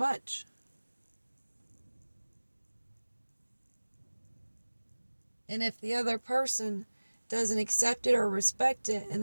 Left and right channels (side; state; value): both; inverted; correlation -1.00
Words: And if the other person doesn't accept it or respect it, and